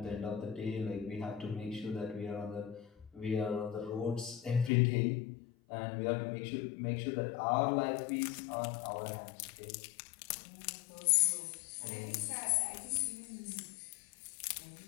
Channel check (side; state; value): right; drops out; at 4.7 s